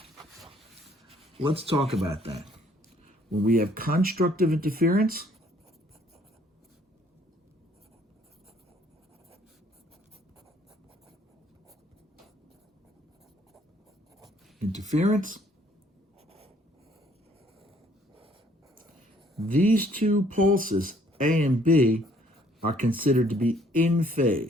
let's talk about that. When we have constructive interference, these two pulses, A and B, are considered to be in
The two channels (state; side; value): normal; both; correlation 0.62